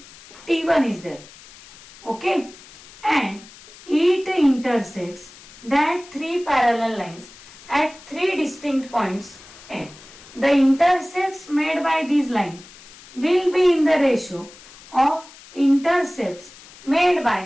T1 is there, okay, and it intersects that three parallel lines at three distinct points, and the intercepts made by these lines will be in the ratio of intercepts made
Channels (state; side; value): noise; left; hiss, 21 dB below the sound